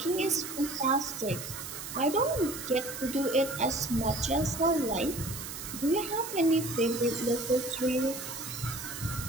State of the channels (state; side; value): noise; right; hiss, 9 dB below the sound